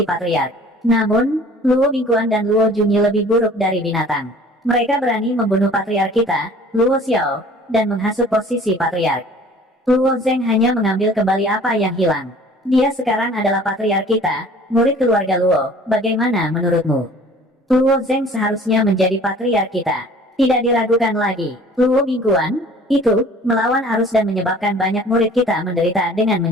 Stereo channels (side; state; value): both; normal; correlation 0.49